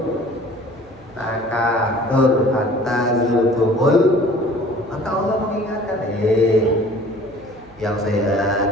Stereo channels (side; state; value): right; noise; hum, 26 dB below the sound